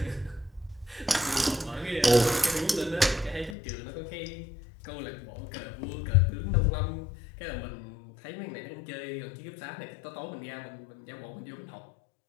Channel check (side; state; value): right; drops out; at 3.6 s